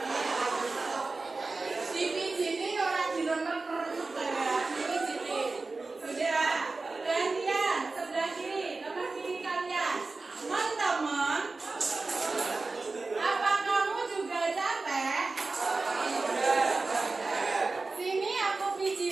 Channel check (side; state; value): left; quieter; 3.7 dB